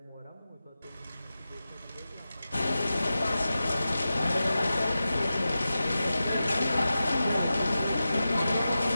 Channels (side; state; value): both; inverted; correlation -0.93